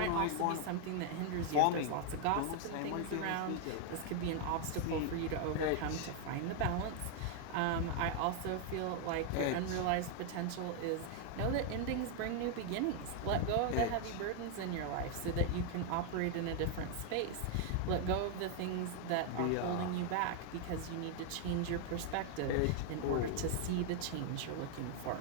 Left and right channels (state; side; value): different; both; correlation 0.00